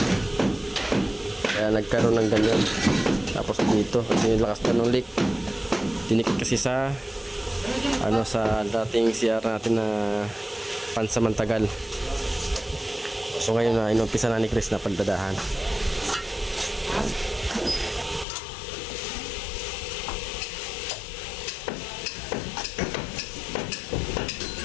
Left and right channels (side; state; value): right; drops out; at 18.2 s